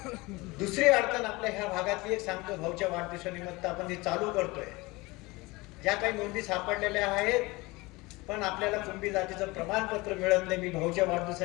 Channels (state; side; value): quieter; right; 22.9 dB